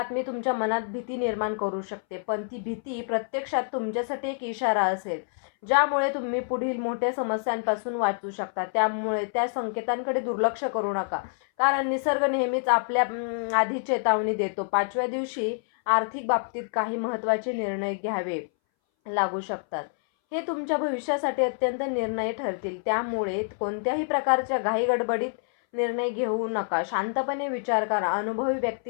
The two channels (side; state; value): right; silent; 60 dB below the other